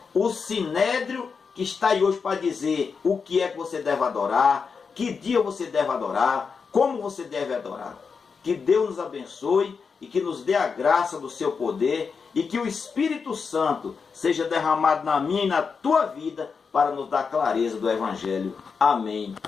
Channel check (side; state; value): right; quieter; 5.5 dB